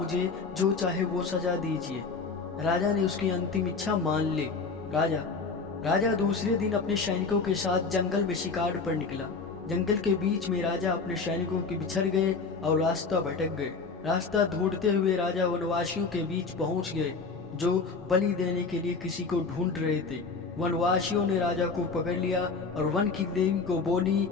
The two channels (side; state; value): right; quieter; 4.6 dB